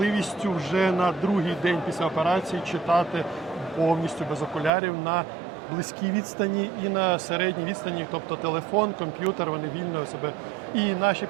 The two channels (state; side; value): drops out; left; at 4.7 s